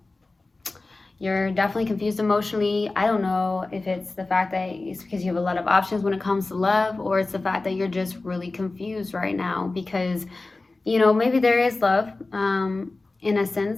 You're definitely confused emotionally. I don't know if it's the fact that it's because you have a lot of options when it comes to love, or it's the fact that you're just really confused right now because, you know, maybe there is love in a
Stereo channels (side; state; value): right; quieter; 3.3 dB